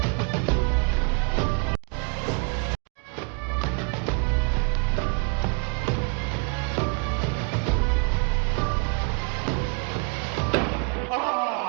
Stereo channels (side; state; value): left; quieter; 36.6 dB